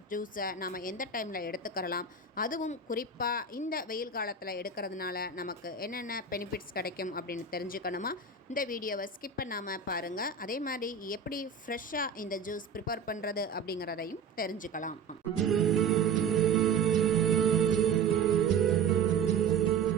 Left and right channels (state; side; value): quieter; left; 5.2 dB